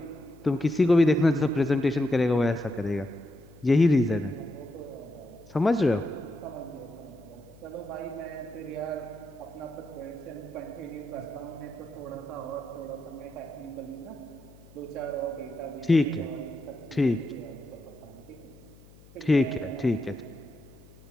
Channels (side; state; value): left; noise; hum, 24 dB below the sound